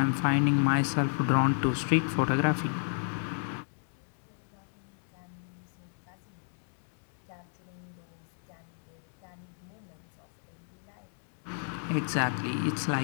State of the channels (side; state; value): right; silent; digital silence